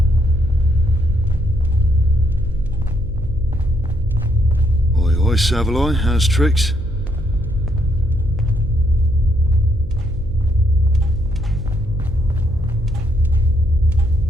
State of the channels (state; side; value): noise; right; hum, 15 dB below the sound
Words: Oi, oi, Savaloy, how's tricks?